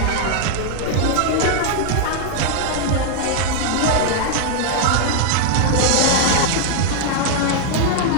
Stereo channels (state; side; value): different; both; correlation 0.00